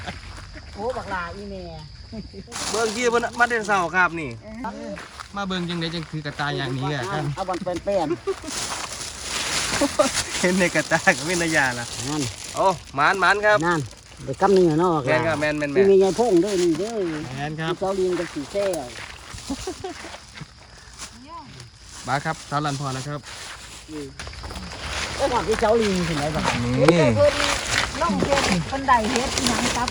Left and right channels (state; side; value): identical; both; correlation 1.00